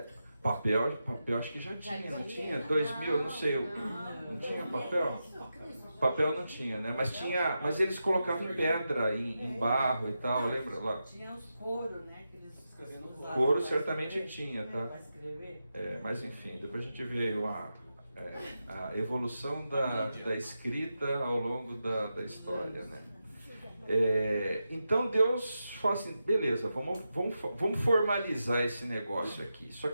Papel acho que já tinha, não tinha? 2000, não sei, não tinha papel? Papel não tinha, né? Mas eles colocavam em pedra, em barro e tal, lembra lá? Tinha os coros, né? Couro certamente tinha, tá? Mas enfim, depois a gente vê a evolução da escrita ao longo da história, né? Então Deus fala assim, beleza, vamos formalizar esse negócio aqui. Só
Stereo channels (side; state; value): both; inverted; correlation -0.89